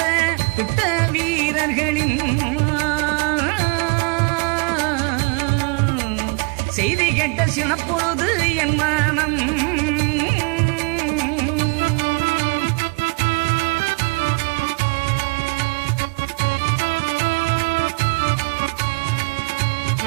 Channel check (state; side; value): quieter; left; 30.7 dB